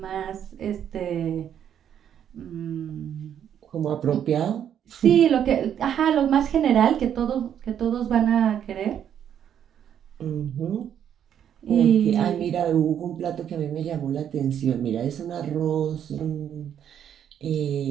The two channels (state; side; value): quieter; left; 9.4 dB